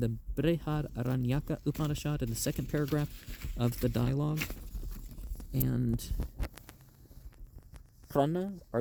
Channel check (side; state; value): both; identical; correlation 1.00